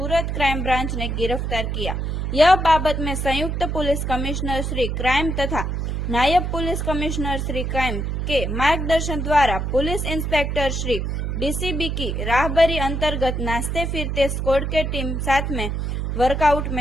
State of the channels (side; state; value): right; noise; hum, 2 dB below the sound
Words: क्राइम ब्रांच ने गिरफ्तार किया। यह बाबत में संयुक्त पुलिस कमिश्नर श्री क्राइम तथा नायब पुलिस कमिश्नर श्री क्राइम के मार्गदर्शन द्वारा पुलिस इंस्पेक्टर श्री डीसीबी की राहबरी अंतर्गत नाचते फिरते स्क्वाड के टीम साथ में वर्कआउट